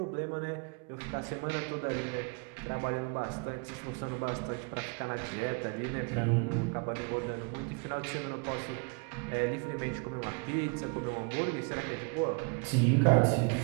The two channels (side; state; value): left; quieter; 33.9 dB